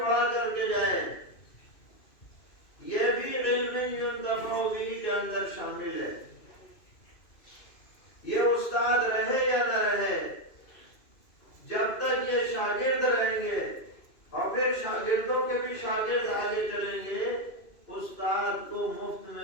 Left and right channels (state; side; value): late; right; 2.5 ms